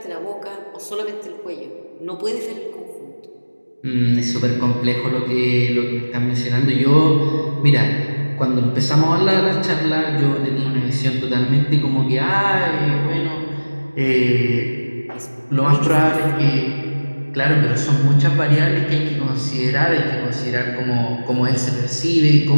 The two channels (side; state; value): both; inverted; correlation -1.00